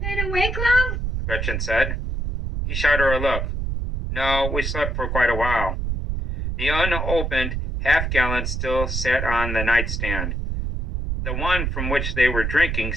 awake long? Gretchen said. He shot her a look. No, we slept for quite a while. The unopened half-gallon still sat on the nightstand. The one from which they were drinking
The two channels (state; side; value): noise; right; rumble, 2 dB below the sound